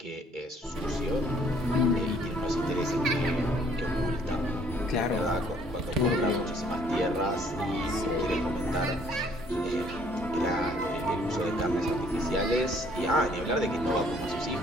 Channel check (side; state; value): both; normal; correlation 0.61